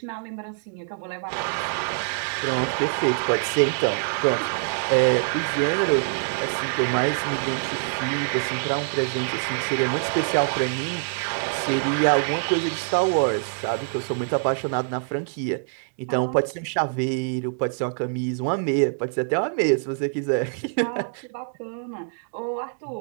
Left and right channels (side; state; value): left; silent; digital silence